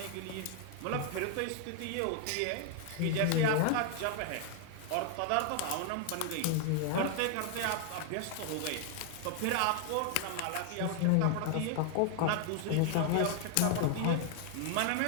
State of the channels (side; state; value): both; different; correlation 0.00